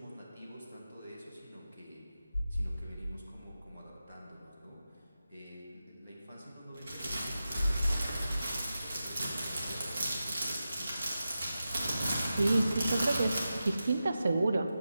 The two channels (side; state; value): both; inverted; correlation -0.92